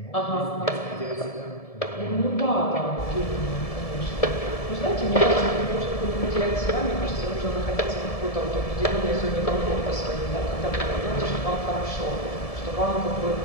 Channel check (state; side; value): late; right; 1.7 ms